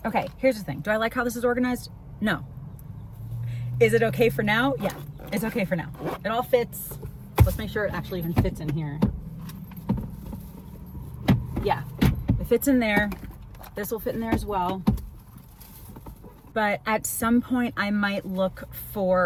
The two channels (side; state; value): both; identical; correlation 1.00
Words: Okay, here's the thing. Do I like how this is organized? No. Is it okay for now? Yeah, it's okay for now. It all fits. Let's make sure it actually even fits in here. Yeah, it fits in there. This will fit in there as well. But at some point I might look